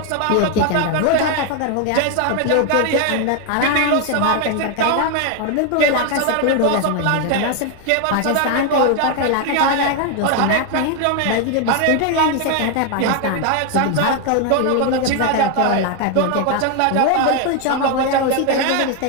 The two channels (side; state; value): both; different; correlation 0.01